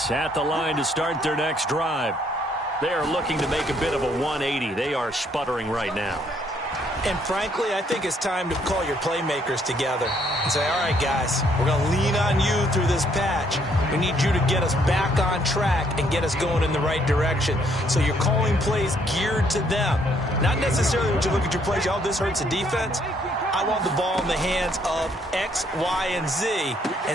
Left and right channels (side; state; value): both; normal; correlation 0.68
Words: at the line to start their next drive. They are looking to make a bit of a 180. They are sputtering right now. And frankly, I think it's time to call your playmakers together and say, all right, guys, we're going to lean on you through this patch. We need you to get us back on track and get us going in the right direction. So you're calling plays geared to them. Not necessarily when you look at your plays, oh, this hurts the defense. I want the ball in the hands of X, Y, and Z